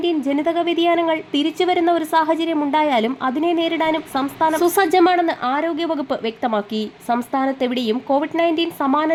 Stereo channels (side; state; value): both; identical; correlation 1.00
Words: ജനിതക വ്യതിയാനങ്ങൾ തിരിച്ചുവരുന്ന ഒരു സാഹചര്യം ഉണ്ടായാലും അതിനെ നേരിടാനും സംസ്ഥാനം സുസജ്ജമാണെന്ന് ആരോഗ്യവകുപ്പ് വ്യക്തമാക്കി. സംസ്ഥാനത്തെവിടെയും COVID-19 സമാന